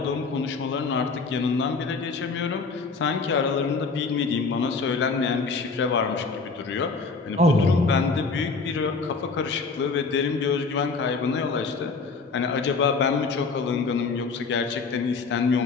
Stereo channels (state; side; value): quieter; right; 4.4 dB